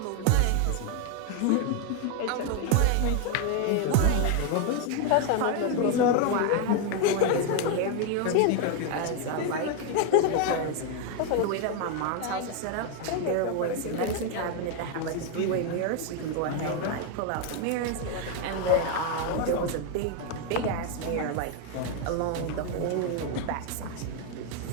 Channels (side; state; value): both; different; correlation 0.01